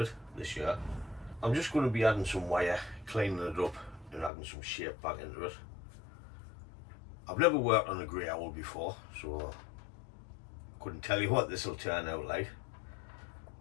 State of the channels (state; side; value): drops out; right; at 4.3 s